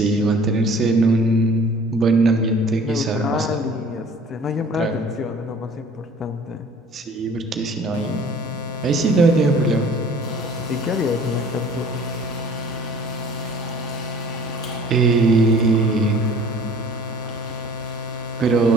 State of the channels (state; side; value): normal; both; correlation 0.49